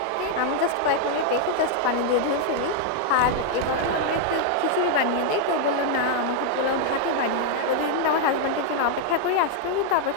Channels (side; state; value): both; different; correlation 0.00